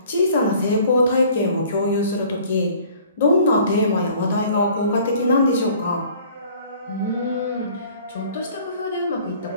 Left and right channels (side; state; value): both; inverted; correlation -0.53